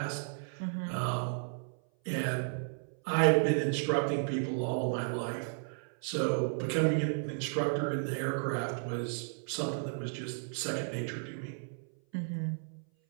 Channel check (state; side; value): silent; left; 55 dB below the other